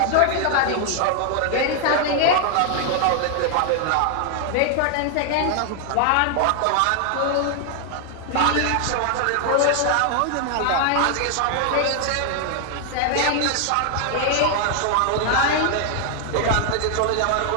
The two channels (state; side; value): different; both; correlation 0.00